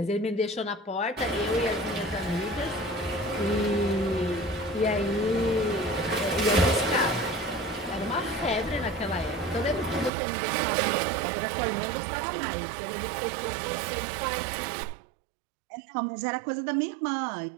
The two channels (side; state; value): left; drops out; at 10.1 s